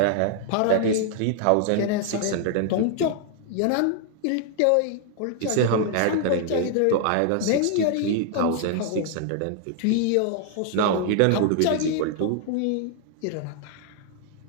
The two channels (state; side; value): different; both; correlation 0.00